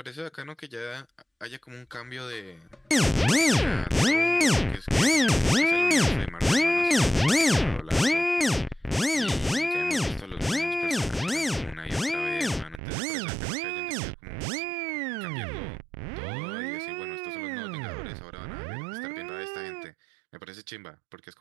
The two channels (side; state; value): left; drops out; at 12.8 s